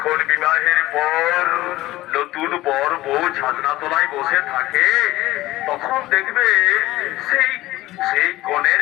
বিবাহের পর নতুন বর বউ ছাদনা তলায় বসে থাকে তখন দেখবে সেই কনের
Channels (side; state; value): right; quieter; 17.2 dB